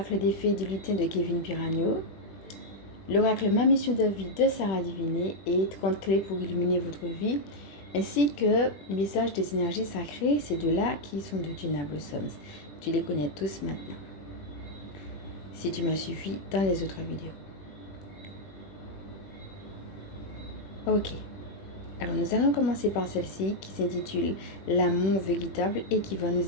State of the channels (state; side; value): late; right; 21 ms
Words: des fées du lutin de Kevin Piragno, l'oracle Ma mission de vie de Sarah Diviné et 30 clés pour illuminer votre vie, ainsi que message des énergies sacrées, ces deux-là qui sont de Gina Blossoms. Tu les connais tous maintenant, si tu m'as suffi dans les autres vidéos. Ok, alors nous allons commencer par celle-ci qui s'intitule L'amour véritable et qui va